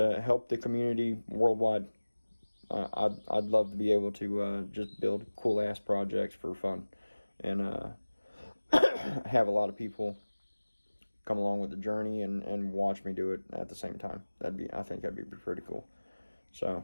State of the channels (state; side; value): inverted; both; correlation -1.00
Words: help the community worldwide. I'd love to be able to just build cool ass projects for fun, and have a lot of people come along with the journey and watch me do it at the same time. I think that'd be pretty cool.